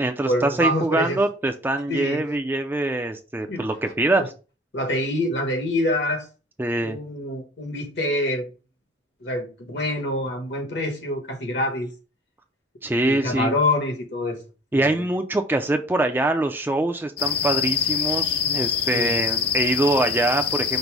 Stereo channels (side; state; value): both; normal; correlation 0.44